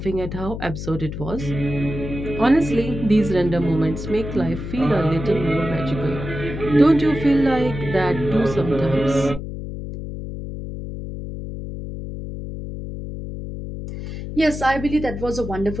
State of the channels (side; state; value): left; noise; hum, 8 dB below the sound